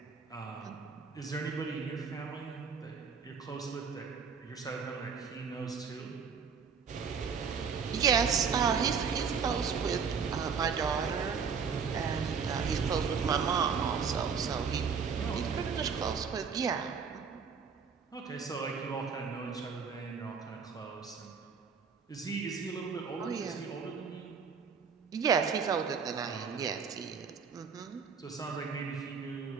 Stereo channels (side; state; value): left; quieter; 6.1 dB